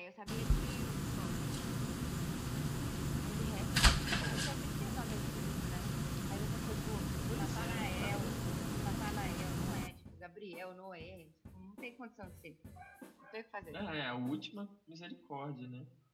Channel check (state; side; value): identical; both; correlation 1.00